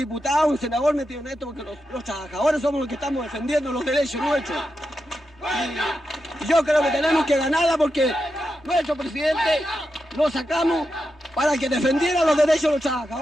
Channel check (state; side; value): normal; both; correlation 0.88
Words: un senador metido en esto, porque los trabajadores somos los que estamos defendiendo los derechos nuestros. Y yo creo que tenemos que ganarla porque nuestro presidente lo sacamos para que defendiera los derechos de los